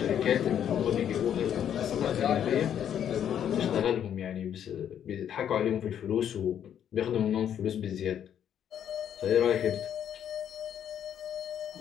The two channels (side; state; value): right; quieter; 9.5 dB